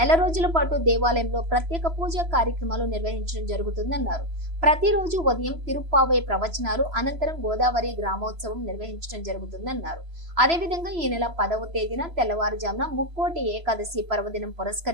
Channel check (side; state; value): left; late; 3.0 ms